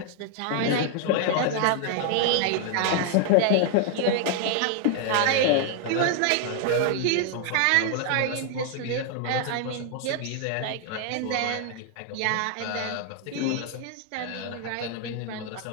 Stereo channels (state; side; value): different; both; correlation 0.00